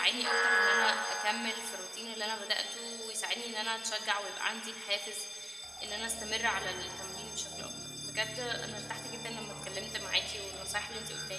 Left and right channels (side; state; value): both; identical; correlation 1.00